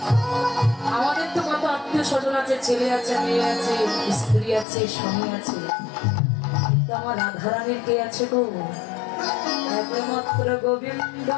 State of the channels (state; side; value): drops out; right; at 4.7 s